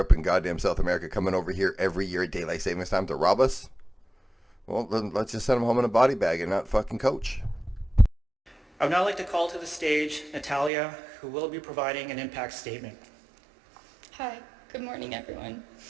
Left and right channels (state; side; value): drops out; left; at 10.7 s